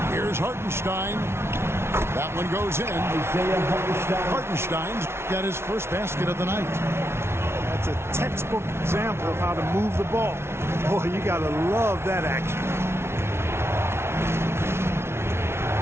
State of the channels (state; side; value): late; left; 0.12 ms